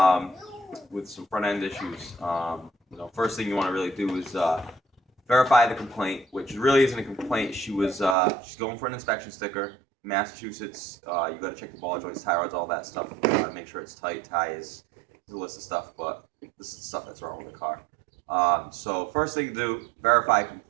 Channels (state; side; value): drops out; left; at 8.2 s